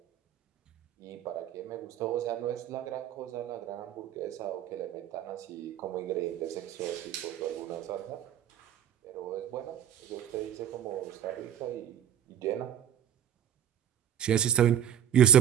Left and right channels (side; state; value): left; quieter; 10.3 dB